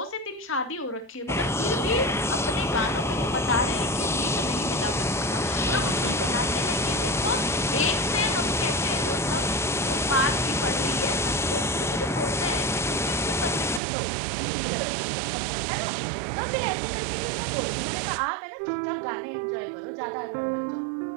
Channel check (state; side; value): drops out; left; at 13.8 s